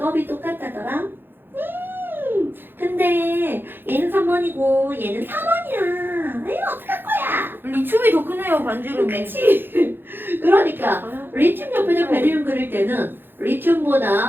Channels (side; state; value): left; late; 0.10 ms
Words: 똑같다더라. 근데 얘는 3번이고 얘는 4번이야. 이거 어떡할 거야? 리튬이 더 크네요 반지름이. 그치? 그러니까 리튬 옆에다 베릴륨 그릴 때는